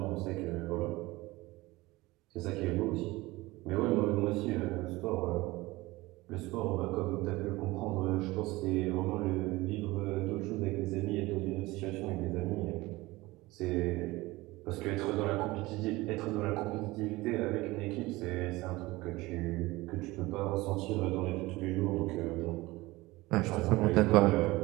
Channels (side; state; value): left; quieter; 20.4 dB